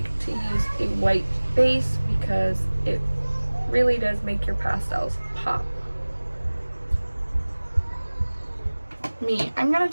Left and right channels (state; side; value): inverted; both; correlation -1.00